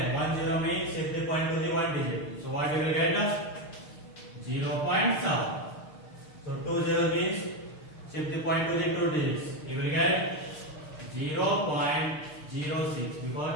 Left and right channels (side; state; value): right; late; 6.6 ms